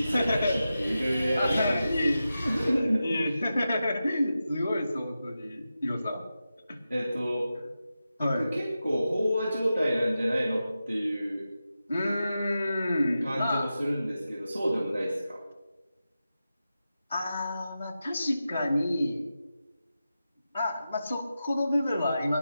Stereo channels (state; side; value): inverted; both; correlation -0.91